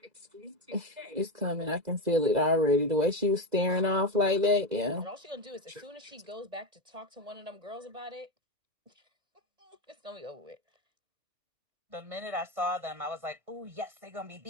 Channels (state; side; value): late; left; 2.0 ms